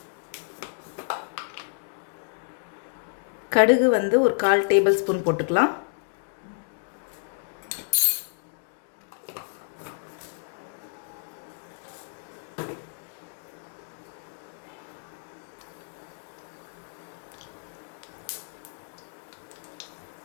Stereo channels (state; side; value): silent; right; digital silence